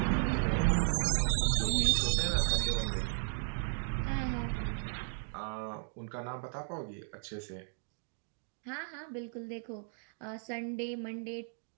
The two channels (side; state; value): left; silent; 54 dB below the other